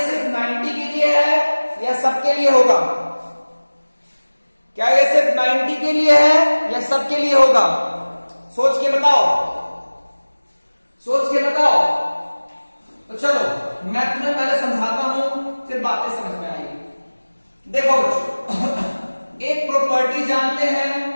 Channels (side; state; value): both; inverted; correlation -1.00